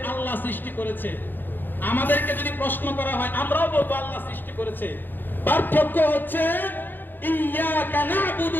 আল্লাহ সৃষ্টি করেছে। আমাদেরকে যদি প্রশ্ন করা হয়, আমরাও বলবো আল্লাহ সৃষ্টি করেছে। পার্থক্য হচ্ছে ইয়্যাকা না'বুদু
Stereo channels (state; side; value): late; right; 0.091 ms